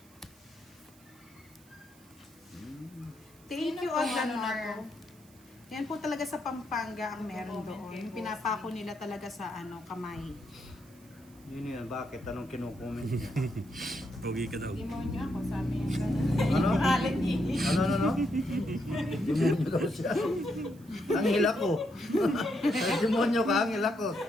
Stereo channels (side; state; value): right; noise; hiss, 27 dB below the sound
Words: Thank Sino you, pong ano na Odlanor. Yan po talaga sa Pampanga ang meron Nagko-comment doon. kay Yung Boss. pinapako nila talaga sa kamay. Yun yun, bakit? Anong kinukomment niya? Pogi ka daw. Demonyo ako, sabi niya. Ano? Alit eh. Ano? Demonyo daw siya. Ang hila ko. Demonyo ka, ang hila ko.